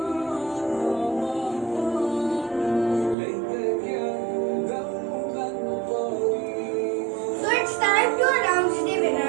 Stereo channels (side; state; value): left; drops out; at 3.2 s